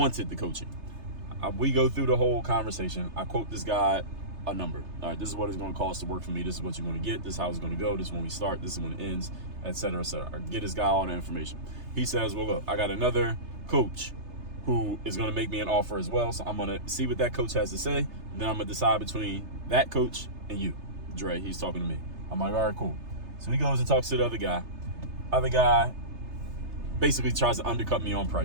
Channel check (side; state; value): left; late; 3.3 ms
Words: the coaching. We go through the whole conversation. I quote this guy a number. All right, this is what it's going to cost to work for me. This is what you're going to get. This is how it's going to go. This is when we start. This is when it ends, et cetera, et cetera. I get this guy all the information. He says, well, look, I got another coach who is going to make me an offer as well. So I'm going to see what that coach has to say. And then I'm going to decide between that coach and you, Dre. He's talking to me. I'm like, all right, cool. So he goes and talks to the other guy. Other guy basically tries to undercut me on